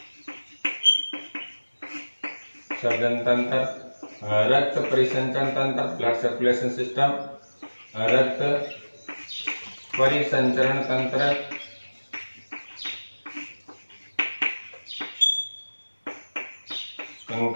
सर्जन तंत्र, रक्त परिसंचरण तंत्र, ब्लड सर्कुलेशन सिस्टम, रक्त परिसंचरण तंत्र,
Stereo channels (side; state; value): both; inverted; correlation -1.00